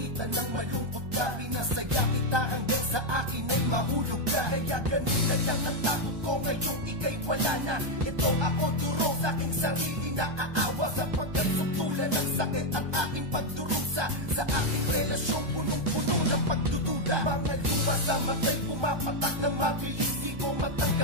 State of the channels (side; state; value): left; late; 1.3 ms